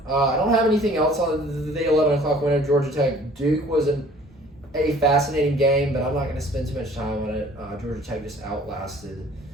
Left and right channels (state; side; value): normal; both; correlation 0.52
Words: I don't have anything else on the 11 o'clock winner. Georgia Tech Duke was a fascinating game, but I'm not going to spend too much time on it. Georgia Tech just outlasted